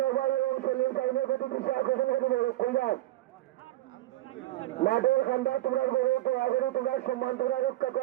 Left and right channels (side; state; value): left; quieter; 16.3 dB